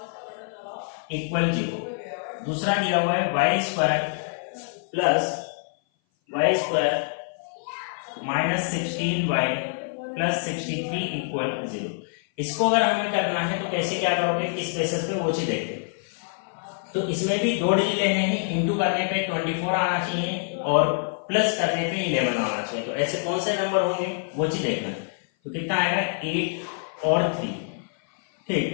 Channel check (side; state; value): right; silent; 57 dB below the other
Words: equal 0। दूसरा दिया हुआ है y square plus y square minus 16y plus 63 equal 0। इसको अगर हमें करना है तो कैसे क्या करोगे, किस बेसिस पे, वो चीज देखते हैं। तो इसमें भी दो डिजिट लेने हैं, इंटू करने पे 24 आना चाहिए और प्लस करने पे 11 आना चाहिए। तो ऐसे कौन से नंबर होंगे वो चीज देखना है। तो कितना आएगा, 8 और 3।